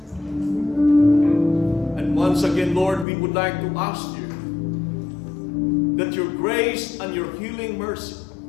And once again, Lord, we would like to ask you that your grace and your healing mercy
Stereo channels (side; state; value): right; drops out; at 3.1 s